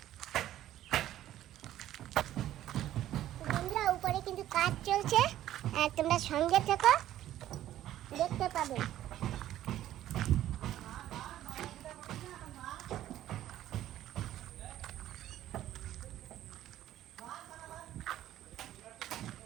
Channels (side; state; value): left; quieter; 12.9 dB